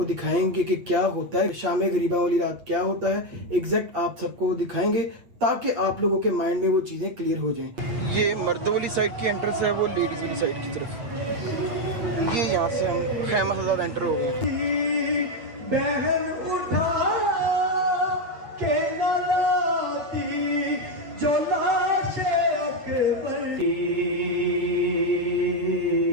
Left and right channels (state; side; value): late; left; 8.5 ms